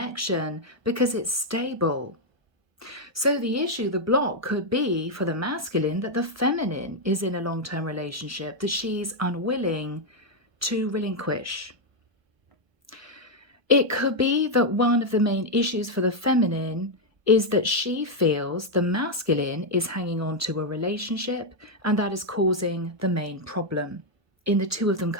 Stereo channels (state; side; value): late; left; 1.2 ms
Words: because it's stable. So the issue, the block, could be for the masculine that the feminine is in a long-term relationship that she's unwilling to relinquish. It could be that one of the main issues for the feminine is that she feels the masculine is hanging on to a relationship, and that is causing the main problem in the two of them